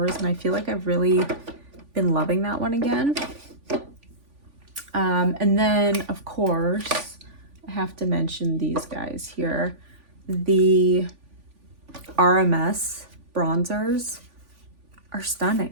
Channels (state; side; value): late; left; 3.5 ms